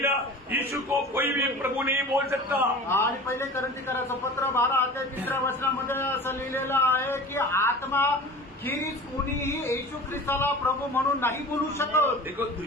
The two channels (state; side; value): normal; both; correlation 0.37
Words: यीशु को कोई भी प्रभु नहीं बोल सकता. आणि पहिले कोरिन्थीकराचं पत्र 12:3 वचनामध्ये असं लिहिलेलं आहे की आत्मा खेरीज कोणीही येशू ख्रिस्ताला प्रभू म्हणून नाही बोलू शकत. देखो,